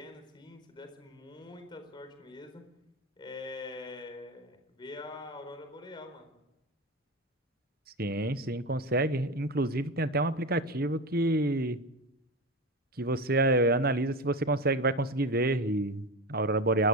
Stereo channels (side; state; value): both; normal; correlation 0.22